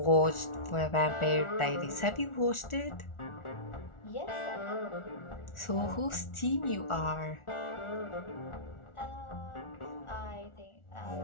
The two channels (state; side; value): late; right; 1.4 ms